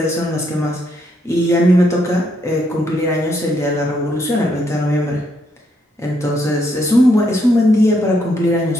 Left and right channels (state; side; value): normal; both; correlation 0.75